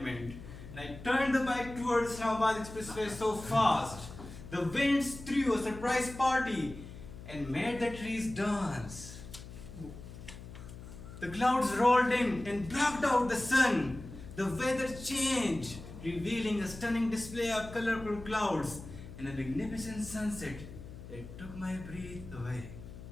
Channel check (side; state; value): left; noise; hum, 14 dB below the sound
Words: And I turned the bike towards Islamabad Expressway so fast. The winds threw a surprise party and made the trees dance. The clouds rolled in and blocked out the sun. The weather changed, revealing a stunning display of colorful clouds and a magnificent sunset that took my breath away.